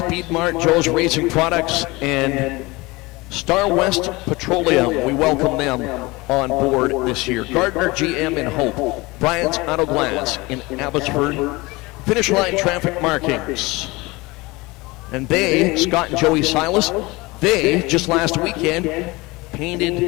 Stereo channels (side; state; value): right; quieter; 23.0 dB